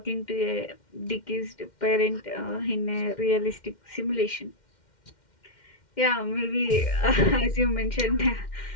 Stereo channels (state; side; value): late; right; 2.1 ms